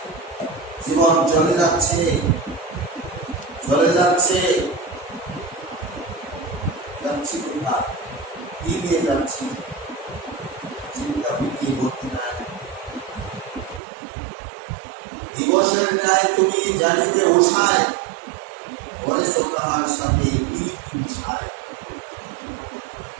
জীবন চলে যাচ্ছে, যাচ্ছি কোথায়, কি নিয়ে যাচ্ছি, চিন্তা ভিটিয়ে ভর্তি নাই। দিবসের ন্যায় তুমি জানিবে উষায়, করেছ তাহার সাথে মিশায়।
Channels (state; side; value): drops out; left; at 13.8 s